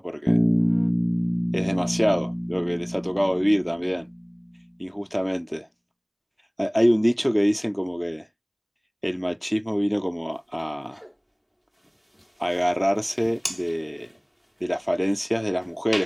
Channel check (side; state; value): both; identical; correlation 1.00